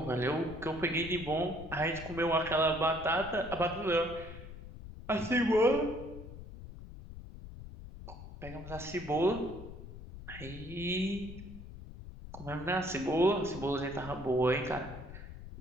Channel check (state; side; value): noise; left; rumble, 13 dB below the sound